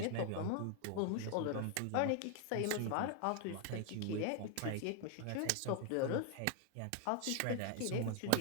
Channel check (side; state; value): both; different; correlation 0.00